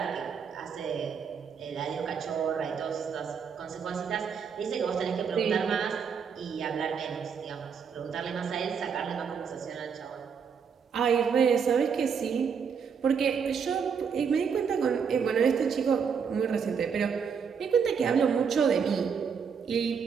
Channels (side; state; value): left; quieter; 6.5 dB